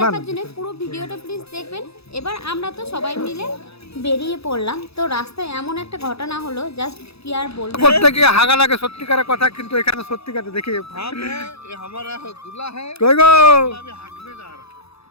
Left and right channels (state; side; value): late; right; 0.78 ms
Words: জন্য পুরো ভিডিওটা প্লিজ দেখবেন। এবার আমরা তো সবাই মিলে বেরিয়ে পড়লাম, তো রাস্তায় এমন একটা ঘটনা হলো, জাস্ট কি আর বলবো। প্রত্যেকে হাগা লাগে সত্যিকারের কথা, কিন্তু এখানে সত্যিকারে দেখি কই গো,